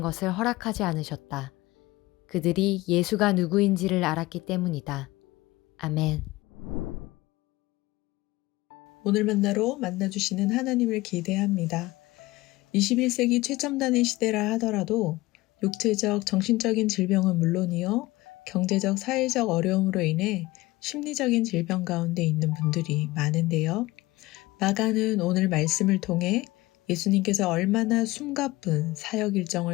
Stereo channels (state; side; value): quieter; right; 19.8 dB